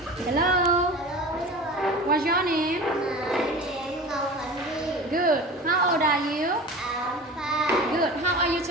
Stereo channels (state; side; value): normal; both; correlation 0.35